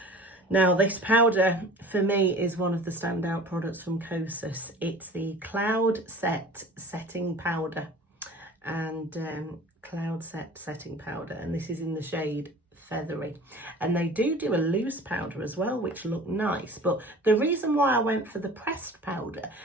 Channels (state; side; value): normal; both; correlation 0.42